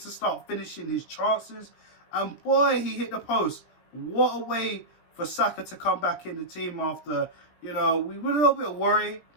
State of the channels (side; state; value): right; late; 17 ms